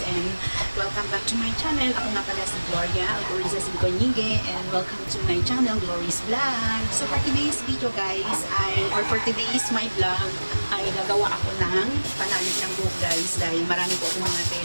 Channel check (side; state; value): both; inverted; correlation -1.00